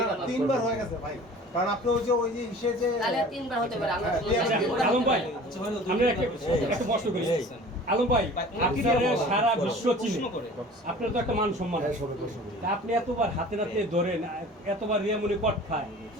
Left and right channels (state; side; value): normal; both; correlation 0.44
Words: তিনবার হয়ে গেছে ভাই, কারণ আপনি ওই যে ইসে যে তাহলে তিনবার হতে পারে। আলম ভাই, আমরা একটা প্রশ্ন করি। আলম ভাই, আপনি সারা বিশ্ব চিনে, আপনার তো একটা মান সম্মান আছে, আপনি এতবার হাতে নাতে ধরেন, এতবার রিয়ামনি কট খায়,